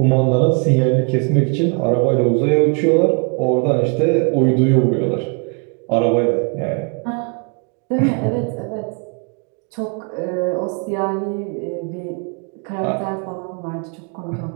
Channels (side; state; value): left; quieter; 36.4 dB